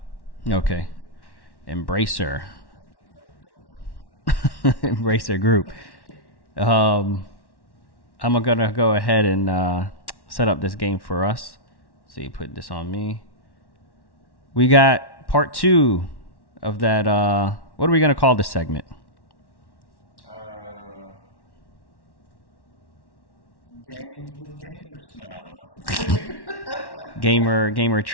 Okay. I'm good. Embracer. Might get another donut. Embracer Group. I'm going to go ahead and set up this game for us. So you put this on me. We got part 2 of that. What are we going to call this segment? Games with gamers. No, I don't know. Gamer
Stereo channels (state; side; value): late; right; 1.1 ms